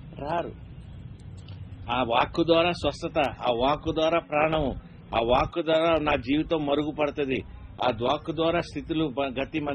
రారు. ఆ వాక్కు ద్వారా స్వస్థత, ఆ వాక్కు ద్వారా ప్రాణము, ఆ వాక్కు ద్వారా నా జీవితం మరుగుపడుతుంది, ఆ వాక్కు ద్వారా స్థితులు గతి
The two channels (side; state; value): both; identical; correlation 1.00